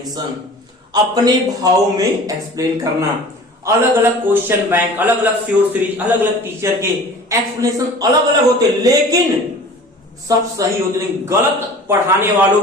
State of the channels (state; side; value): normal; both; correlation 0.43